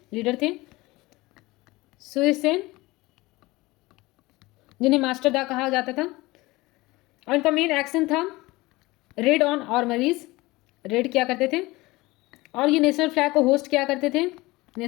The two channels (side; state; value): right; quieter; 20.9 dB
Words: सेन, जिन्हें मास्टर दा कहा जाता था। और इनका मेन एक्शन था रेड ऑन आर्मरीज, रेड किया करते थे, और ये नेशनल फ्लैग को होस्ट किया करते थे,